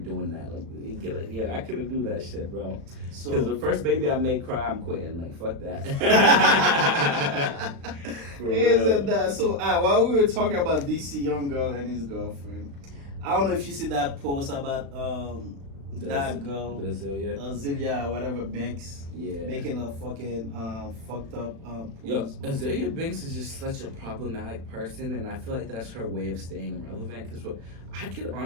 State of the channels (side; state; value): left; late; 36 ms